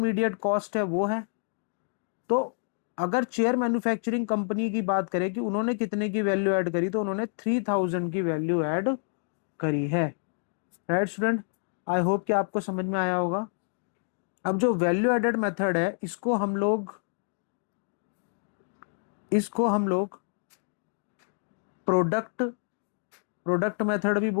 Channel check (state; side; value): silent; right; digital silence